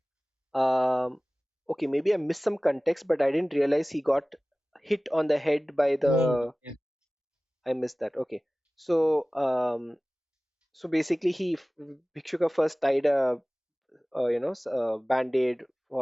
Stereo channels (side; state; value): both; normal; correlation 0.98